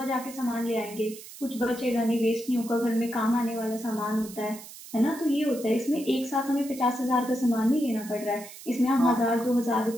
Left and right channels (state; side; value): noise; right; hiss, 15 dB below the sound